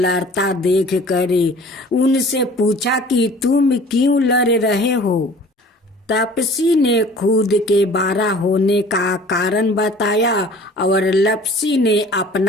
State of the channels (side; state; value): both; normal; correlation 0.48